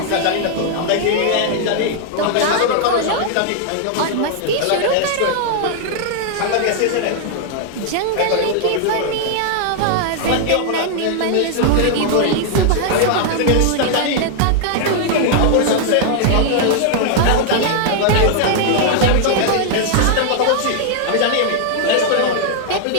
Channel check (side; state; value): both; different; correlation 0.00